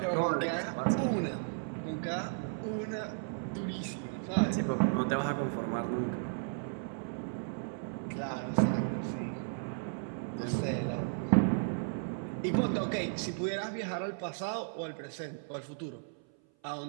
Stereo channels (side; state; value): left; silent; 55 dB below the other